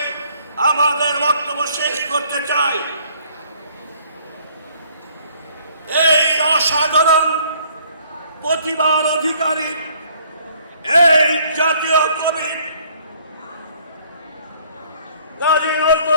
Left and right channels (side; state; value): both; inverted; correlation -0.61